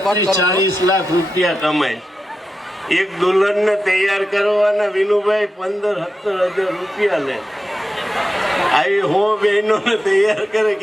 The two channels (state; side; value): normal; both; correlation 0.90